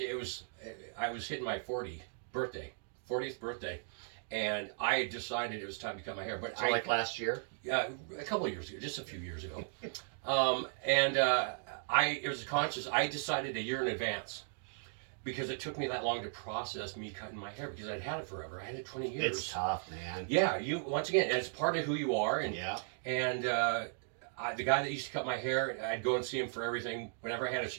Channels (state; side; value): silent; left; digital silence